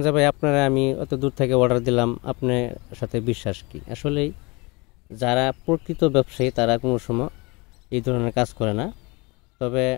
যে ভাই আপনারা আমি অত দূর থেকে অর্ডার দিলাম, আপনার সাথে বিশ্বাস কি? আসলেই যারা প্রকৃত ব্যবসায়ী তারা কোনো সময় এই ধরনের কাজ করে না। তবে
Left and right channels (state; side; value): quieter; right; 26.6 dB